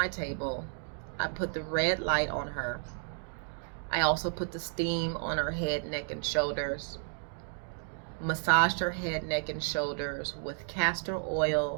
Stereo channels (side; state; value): left; silent; 56 dB below the other